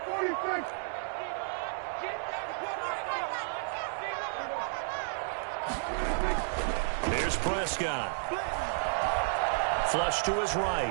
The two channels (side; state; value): left; silent; digital silence